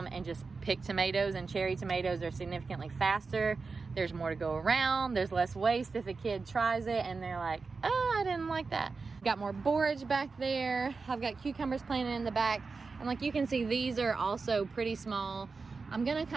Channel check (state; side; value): quieter; left; 4.4 dB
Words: and just pick tomatoes, and cherry tomatoes are significantly faster. There's more to go around. There's less waste if a kid tries it and they're like, oh, I didn't like that. Got more borage back there. I've got cucumbers planted in the back. And like you can see, these are also pretty small. I'm gonna